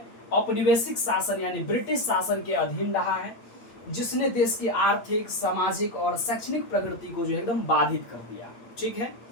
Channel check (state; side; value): late; right; 8.6 ms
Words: औपनिवेशिक शासन यानी ब्रिटिश शासन के अधीन रहा है, जिसने देश की आर्थिक, सामाजिक और शैक्षणिक प्रगति को जो है एकदम बाधित कर दिया। ठीक है।